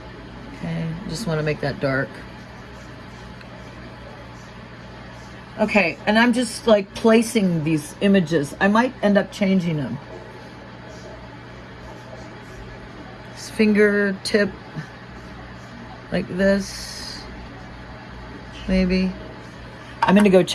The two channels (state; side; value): identical; both; correlation 1.00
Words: Okay, just want to make that dark. Okay, and I'm just like placing these images. I might end up changing them. This fingertip, like this, maybe. I'm gonna go